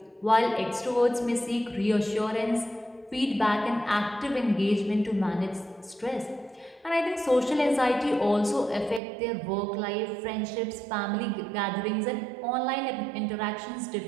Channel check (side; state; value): left; drops out; at 9.0 s